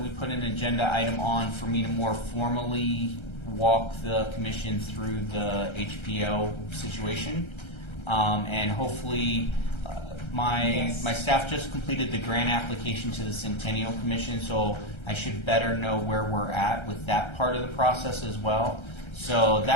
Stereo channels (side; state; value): right; late; 1.3 ms